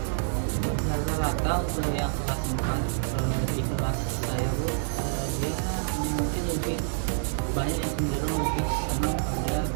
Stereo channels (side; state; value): left; silent; digital silence